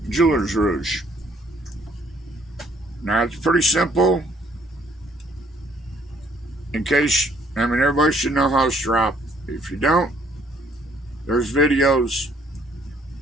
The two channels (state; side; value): normal; both; correlation 0.63